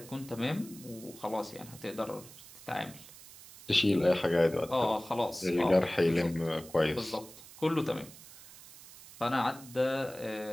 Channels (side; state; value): right; noise; hiss, 18 dB below the sound